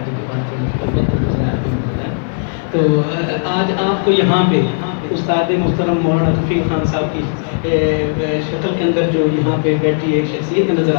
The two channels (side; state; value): right; silent; digital silence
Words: تو آج آپ کو یہاں پہ استاد محترم مولانا رفیق خان صاحب کی شکل کے اندر جو یہاں پہ بیٹھی ایک شخصیت نظر